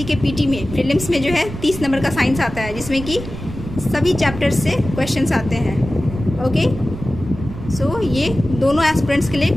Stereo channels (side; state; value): right; noise; rumble, 10 dB below the sound